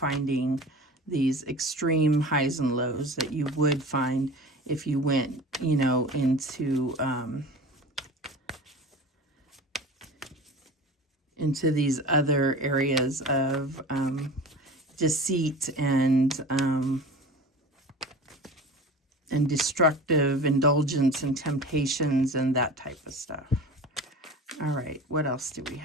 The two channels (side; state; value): both; normal; correlation 0.37